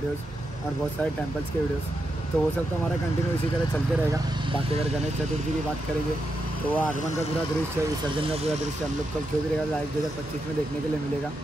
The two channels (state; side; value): normal; both; correlation 0.85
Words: और बहुत सारे टेम्पल्स के वीडियोज़। तो वो सब तो हमारा कंटिन्यू इसी तरह चलते रहेगा। बाकी अगर गणेश चतुर्थी की बात करेंगे तो वो आगमन का पूरा दृश्य, विसर्जन का पूरा दृश्य हम लोग को जो भी रहेगा लाइव 2025 में देखने के लिए मिलेगा।